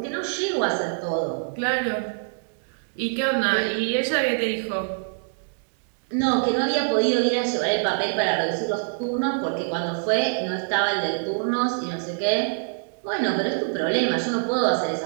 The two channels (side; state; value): left; silent; digital silence